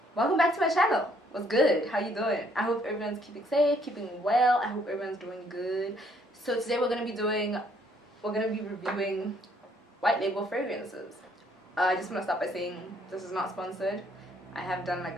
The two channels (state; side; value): normal; both; correlation 0.66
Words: back to my channel. What's good? How you doing? I hope everyone's keeping safe, keeping well. I hope everyone's doing good. So today we're gonna be reviewing white label fragrances. I just want to start by saying this is not sponsored. I have done